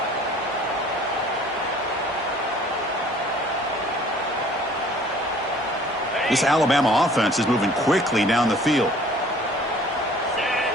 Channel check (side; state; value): both; normal; correlation 0.52